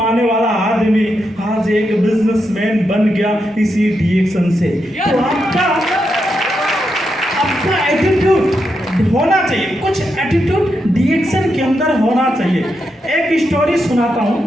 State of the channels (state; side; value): normal; both; correlation 0.84